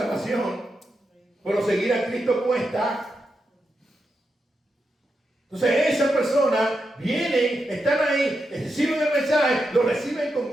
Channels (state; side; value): normal; both; correlation 0.86